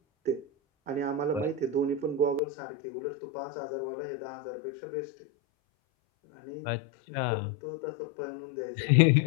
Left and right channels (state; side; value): drops out; right; at 2.4 s